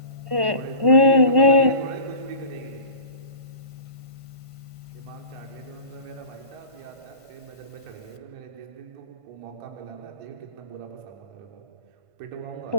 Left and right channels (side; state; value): left; late; 1.5 ms